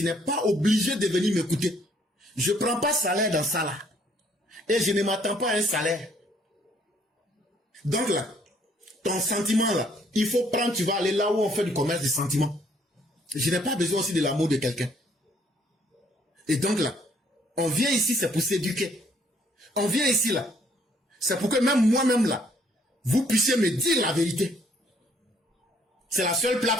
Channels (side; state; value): both; normal; correlation 0.65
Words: n'es pas obligé de venir m'écouter. Je ne prends pas salaire dans ça là. Et je ne m'attends pas à un salaire. Donc là, ton sentiment là, il faut prendre, tu vas aller là où on fait du commerce des sentiments. Je n'ai pas besoin aussi de l'amour de quelqu'un. Et donc là, on vient ici, c'est pour s'éduquer. On vient ici là. C'est pour que même moi-même là, vous puissiez me dire la vérité. C'est la seule